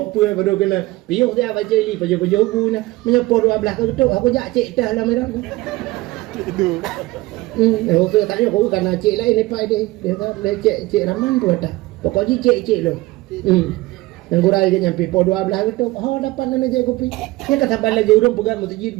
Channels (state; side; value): quieter; left; 19.6 dB